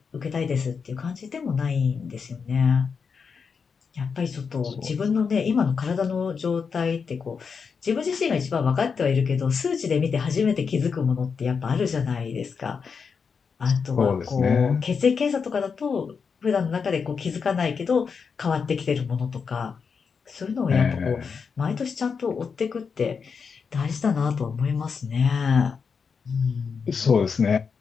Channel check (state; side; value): quieter; right; 5.8 dB